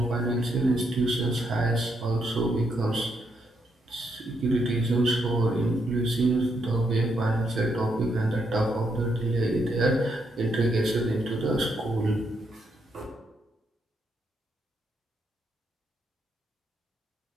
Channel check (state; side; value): normal; both; correlation 0.78